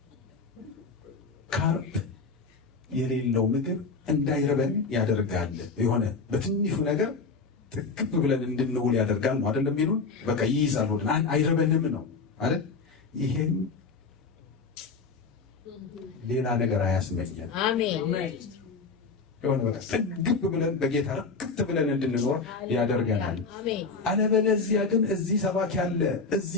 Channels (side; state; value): right; quieter; 4.4 dB